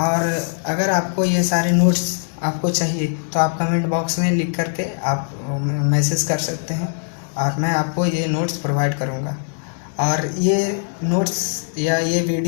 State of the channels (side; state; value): right; silent; digital silence